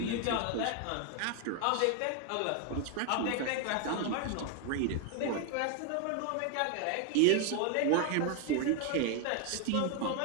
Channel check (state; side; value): different; both; correlation 0.01